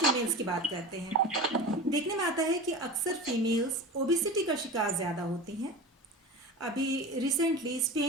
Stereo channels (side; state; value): both; normal; correlation 0.31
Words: की बात करते हैं। देखने में आता है कि अक्सर फीमेल्स ओबिसिटी का शिकार ज़्यादा होती हैं। अभी रिसेंटली